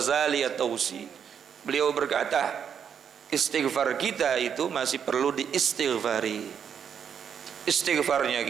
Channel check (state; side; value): quieter; left; 7.8 dB